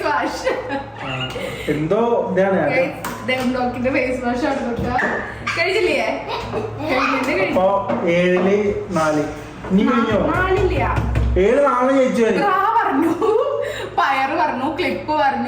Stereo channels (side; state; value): both; identical; correlation 1.00